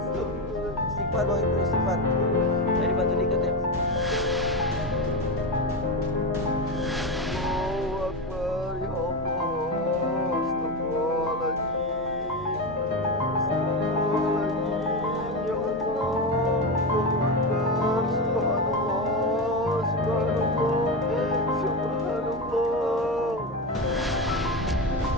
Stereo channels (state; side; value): normal; both; correlation 0.16